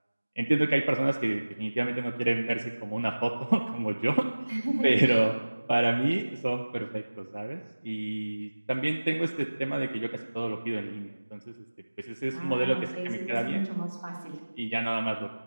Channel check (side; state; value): both; inverted; correlation -1.00